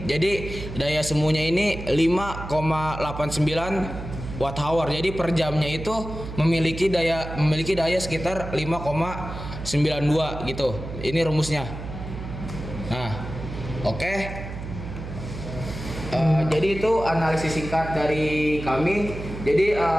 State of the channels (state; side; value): noise; right; hum, 9 dB below the sound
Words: jadi daya semunya ini 5,89 watt hour. Jadi per jamnya itu memiliki daya sekitar 5,92 gitu. Ini rumusnya. Nah, oke. Jadi itu analisis singkat dari kami. Jadi